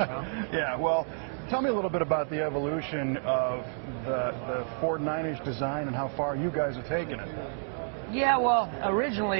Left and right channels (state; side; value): silent; left; digital silence